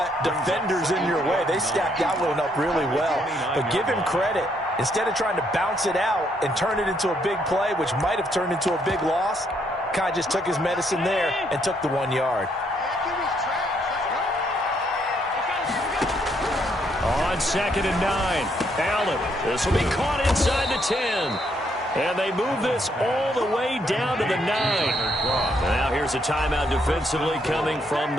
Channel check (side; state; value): both; normal; correlation 0.72